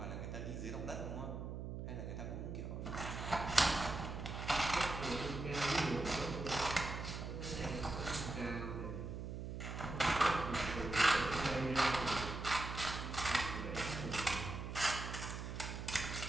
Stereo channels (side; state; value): right; noise; hum, 6 dB below the sound